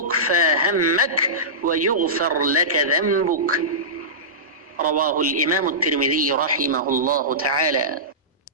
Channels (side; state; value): both; normal; correlation -0.19